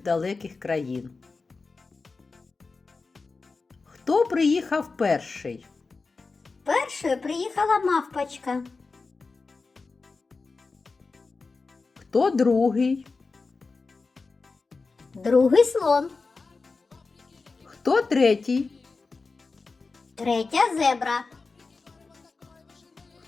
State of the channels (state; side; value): quieter; right; 4.1 dB